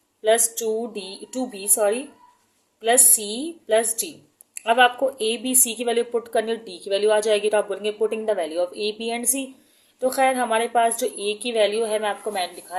plus 2b plus c plus d। अब आपको a b c की वैल्यू पुट करनी है, d की वैल्यू आ जाएगी, तो आप बोलेंगे putting the value of a b and c। तो खैर हमारे पास जो a की वैल्यू है, मैं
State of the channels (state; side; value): identical; both; correlation 1.00